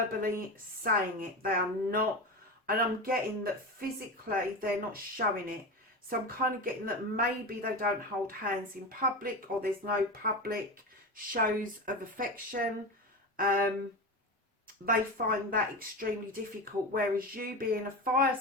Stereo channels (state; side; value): normal; both; correlation 0.23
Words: saying it. They are not. And I'm getting that physically they're not showing it. So I'm kind of getting that maybe they don't hold hands in public, or there's no public shows of affection. They find that extremely difficult, whereas you being a fire